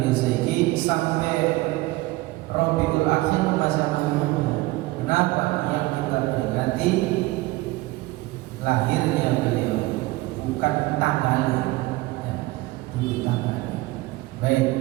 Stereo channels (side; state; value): left; quieter; 20.1 dB